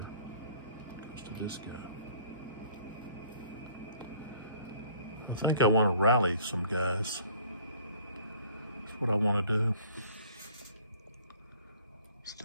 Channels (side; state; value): both; inverted; correlation -0.56